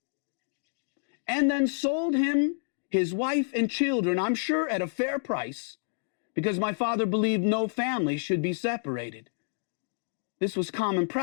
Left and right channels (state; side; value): silent; right; digital silence